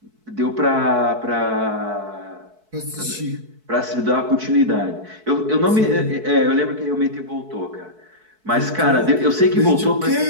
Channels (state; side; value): late; left; 4.6 ms